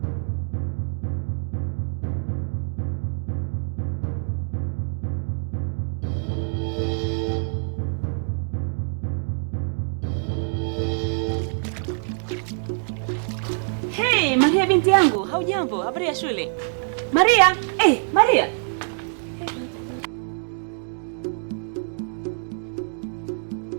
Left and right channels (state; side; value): silent; left; digital silence